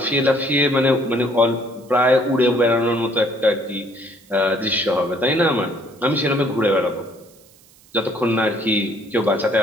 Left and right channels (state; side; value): noise; right; hiss, 28 dB below the sound